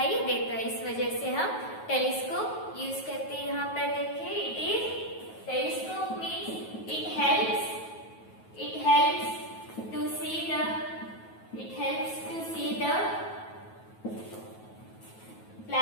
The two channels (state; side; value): late; right; 9.3 ms